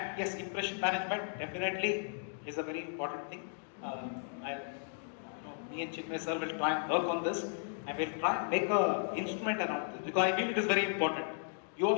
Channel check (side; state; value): right; silent; digital silence